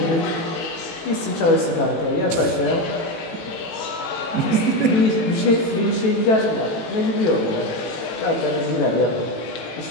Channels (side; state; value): right; late; 18 ms